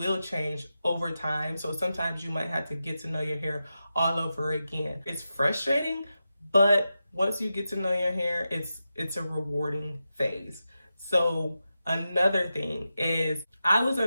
change over time. So sometimes you might have to get to know your hair all over again. It's frustrating, but once you get to know your hair, it's a rewarding phase. So another thing is I was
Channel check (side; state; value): both; inverted; correlation -0.90